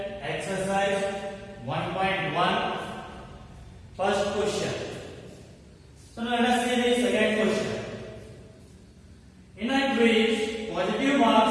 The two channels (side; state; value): both; identical; correlation 1.00